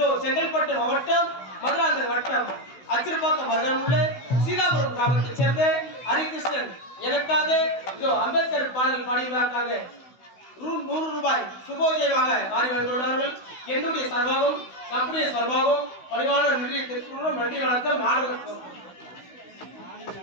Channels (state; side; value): late; right; 16 ms